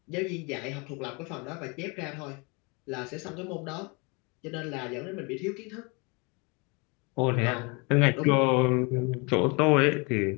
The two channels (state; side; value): quieter; right; 30.0 dB